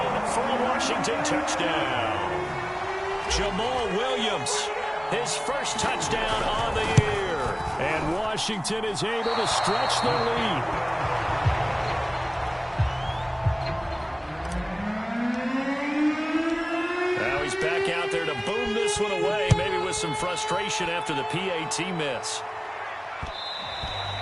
for a Washington touchdown. Jamal Williams, his first touchdown on the year. And Washington is able to stretch their lead. Now he's back out there to boom this one away, maybe with some frustration after the PAT miss.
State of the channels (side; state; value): both; identical; correlation 1.00